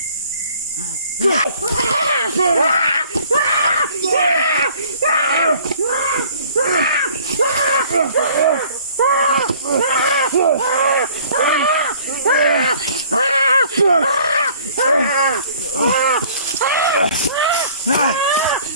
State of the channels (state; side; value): inverted; both; correlation -0.54